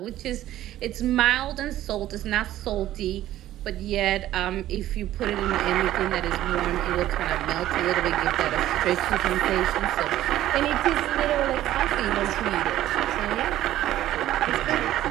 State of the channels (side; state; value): left; quieter; 13.7 dB